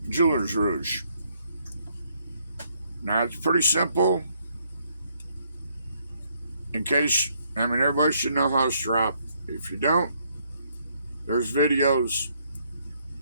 jeweler's rouge. Now, it's pretty simple. In case, I mean, everybody should know how to strop. If you don't, there's videos.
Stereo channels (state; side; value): inverted; both; correlation -0.71